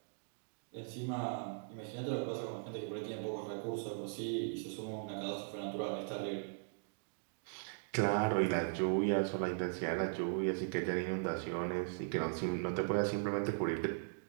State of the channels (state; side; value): silent; left; digital silence